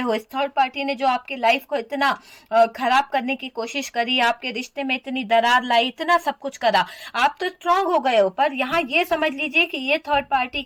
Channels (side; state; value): both; identical; correlation 1.00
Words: इस थर्ड पार्टी ने जो आपकी लाइफ को इतना खराब करने की कोशिश करी, आपके रिश्ते में इतनी दरार लाई, इतना सब कुछ करा, आप तो स्ट्रांग हो गए हो। पर यहाँ ये समझ लीजिए कि ये थर्ड पार्टी